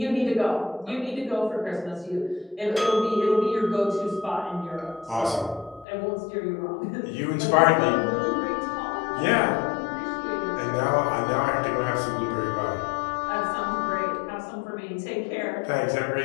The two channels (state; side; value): drops out; right; at 5.9 s